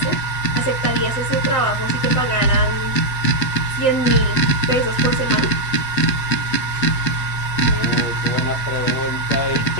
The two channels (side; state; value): right; late; 8.2 ms